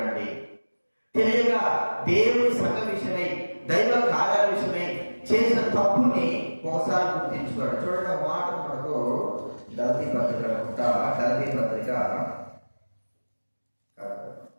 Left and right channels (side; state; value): both; inverted; correlation -1.00